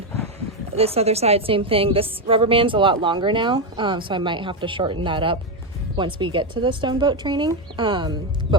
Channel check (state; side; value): normal; both; correlation 0.07